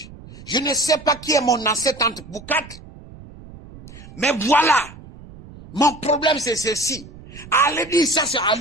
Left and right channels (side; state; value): right; noise; rumble, 18 dB below the sound